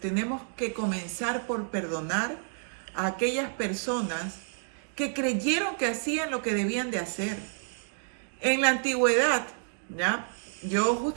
que comenzar por perdonar a aquellas personas que creyeron que hacían lo que debían de hacer. En la antigüedad, ¿ya? Yo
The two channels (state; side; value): silent; left; digital silence